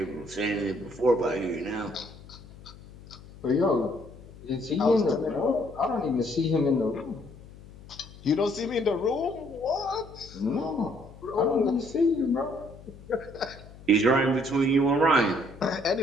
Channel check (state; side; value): noise; left; hum, 19 dB below the sound